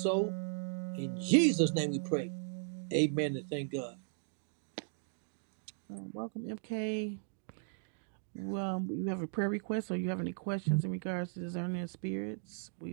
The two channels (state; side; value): silent; left; digital silence